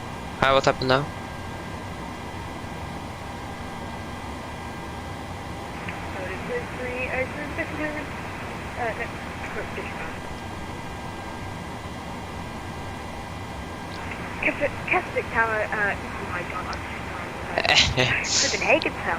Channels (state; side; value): identical; both; correlation 1.00